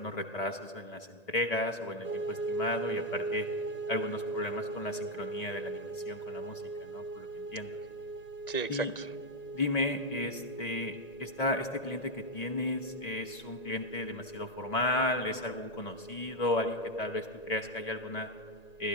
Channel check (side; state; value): right; late; 1.9 ms